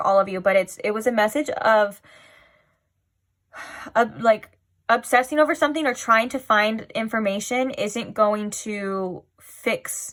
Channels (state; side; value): identical; both; correlation 1.00